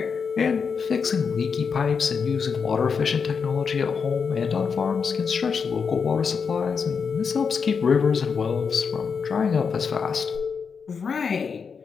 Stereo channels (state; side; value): quieter; right; 5.9 dB